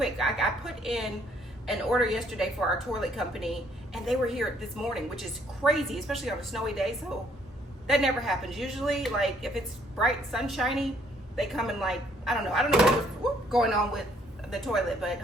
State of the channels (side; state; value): both; normal; correlation 0.66